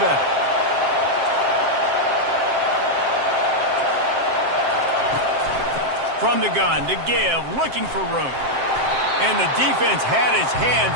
From the gun to give, looking for room. And the defense had his hands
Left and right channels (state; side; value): late; left; 7.6 ms